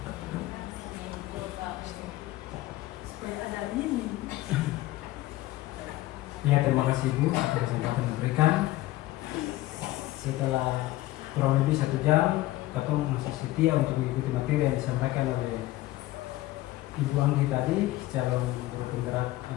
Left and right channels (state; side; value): quieter; right; 16.9 dB